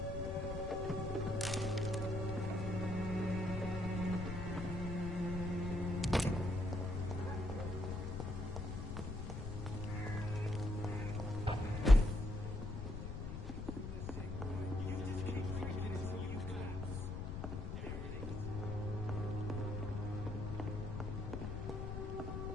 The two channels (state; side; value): noise; left; rumble, 5 dB below the sound